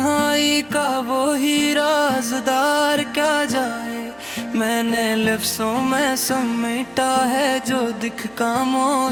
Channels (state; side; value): noise; right; hum, 30 dB below the sound